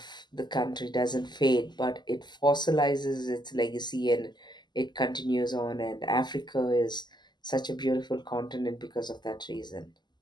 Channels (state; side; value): late; right; 0.21 ms